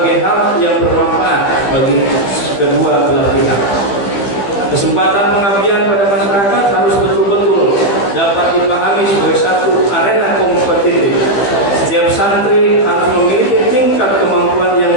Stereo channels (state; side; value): late; right; 15 ms